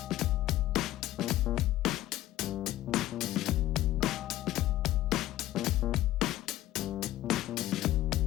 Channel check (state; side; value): quieter; right; 14.7 dB